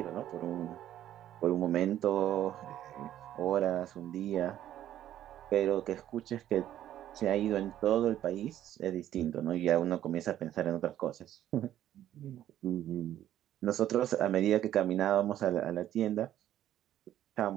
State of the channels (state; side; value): quieter; left; 12.0 dB